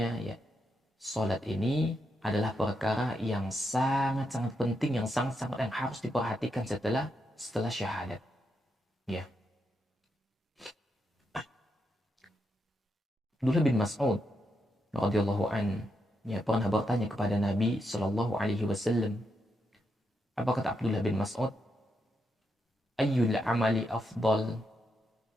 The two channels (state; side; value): normal; both; correlation 0.82